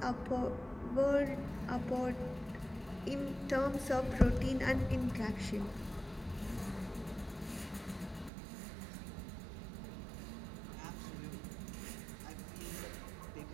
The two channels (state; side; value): drops out; left; at 8.3 s